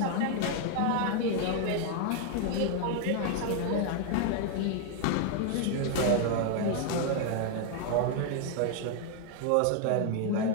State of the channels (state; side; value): different; both; correlation 0.00